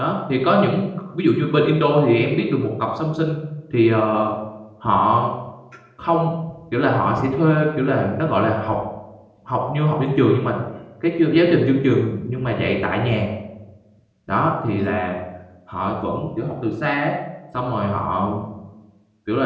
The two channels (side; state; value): both; identical; correlation 1.00